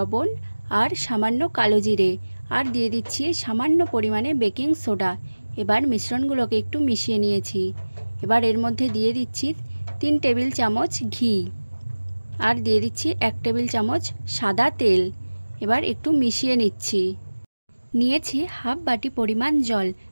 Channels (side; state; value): both; inverted; correlation -1.00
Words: আর সামান্য কালো জিরে, আর দিয়ে দিচ্ছি সামান্য পরিমাণে বেকিং সোডা। এবার মিশ্রণগুলোকে একটু মিশিয়ে নিয়েছি। এবার এর মধ্যে দিয়ে দিচ্ছি 3 টেবিল চামচ ঘি, আর দিয়ে দিচ্ছি 1 টেবিল চামচ সাদা তেল। এবার একটু মিশিয়ে নিচ্ছি। নিয়েছি হাফ বাটি পরিমাণ জল।